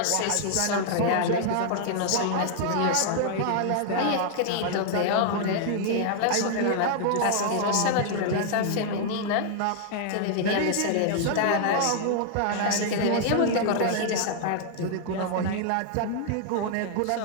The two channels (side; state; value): both; different; correlation -0.01